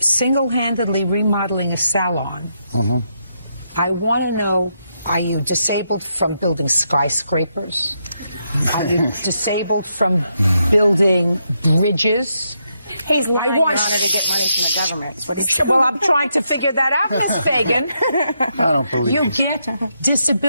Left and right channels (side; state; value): both; inverted; correlation -0.80